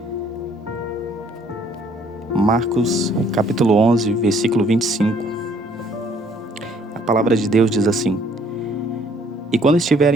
Marcos, capítulo 11, versículo 25. A palavra de Deus diz assim: E quando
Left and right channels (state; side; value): normal; both; correlation 0.62